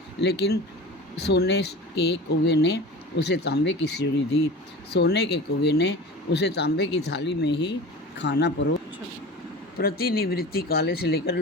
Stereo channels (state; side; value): normal; both; correlation 0.35